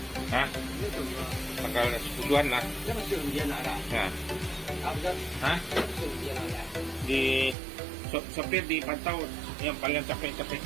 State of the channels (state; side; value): drops out; left; at 7.6 s